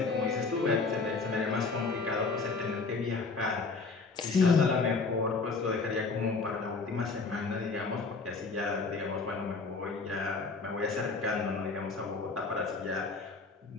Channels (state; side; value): quieter; right; 4.2 dB